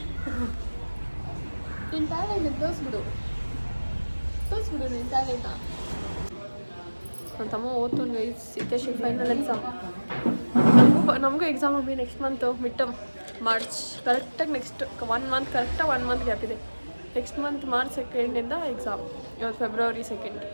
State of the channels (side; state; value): both; inverted; correlation -1.00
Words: ನಿನ್ನ ಟ್ಯಾಲೆಂಟ್ ತೋರಿಸ್ಬಿಡು ನಿನ್ನ ಟ್ಯಾಲೆಂಟ ನನ್ನ ತಮ್ಮ ಓದ್ತುನ್ ಗೈಸ್ ಸಿದ್ದೇಶಿ ಫೈನಲ್ ಎಕ್ಸಾಮ್ ನಮಗೂ ಎಕ್ಸಾಮ್ ಹೋಗಿ ನೆಕ್ಸ್ಟ್ ಮಂತು ಮಿಡ್ ಮಾರ್ಚ್ ಕರೆಕ್ಟಾಗಿ ನೆಕ್ಸ್ಟ್ 1 ಮಂತ್ ಕರೆಕ್ಟಾಗಿ 1 ಮಂತ್ ಗ್ಯಾಪ್ ಇದೆ ನೆಕ್ಸ್ಟ್ ಮಂತ್ ಮಾರ್ಚ್ 2 ಎಕ್ಸಾಮ್ ಇವತ್ತು ಫೆಬ್ರವರಿ 2